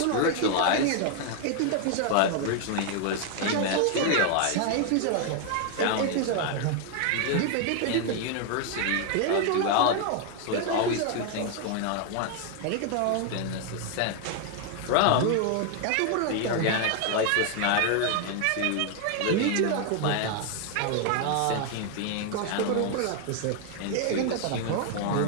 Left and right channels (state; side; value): different; both; correlation 0.00